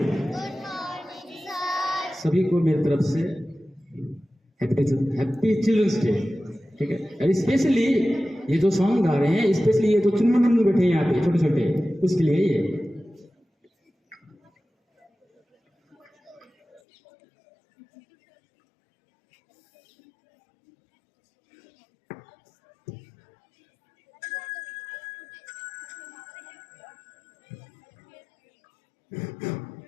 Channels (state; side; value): drops out; right; at 16.8 s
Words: सभी को मेरी तरफ से हैप्पी चिल्ड्रंस डे। ठीक है, और स्पेशली ये जो सॉन्ग गा रहे हैं, स्पेशली ये जो चुन्नू बैठे हैं यहाँ पे छोटे छोटे, उसके लिए ये।